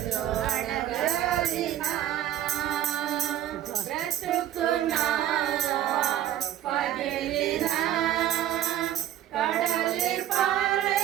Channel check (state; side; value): quieter; left; 11.9 dB